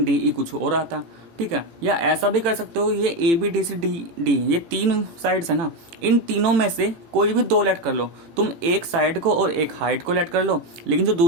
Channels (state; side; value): late; left; 18 ms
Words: डी ई कुछ और आता। ठीक है, या ऐसा भी कर सकते हो, ये A B D C D D ये 3 साइड्स है ना, इन तीनों में से कोई भी 2 लेट कर लो तुम, एक साइड को और एक हाइट को लेट कर लो, लेकिन जो